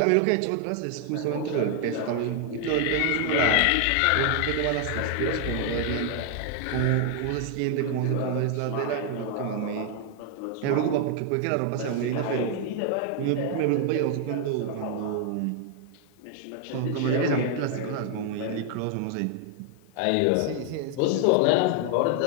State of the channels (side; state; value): both; different; correlation 0.00